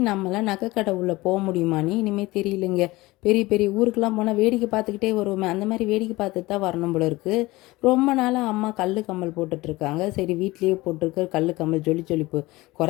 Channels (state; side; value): quieter; right; 20.2 dB